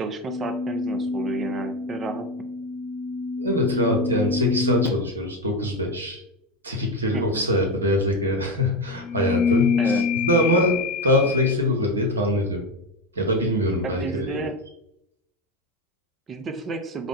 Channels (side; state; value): both; normal; correlation 0.16